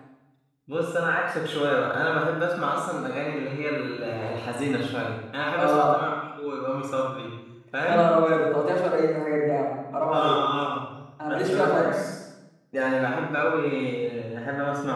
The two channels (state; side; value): identical; both; correlation 1.00